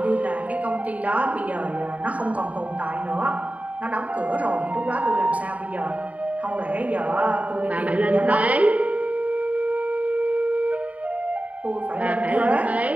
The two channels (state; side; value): late; left; 0.068 ms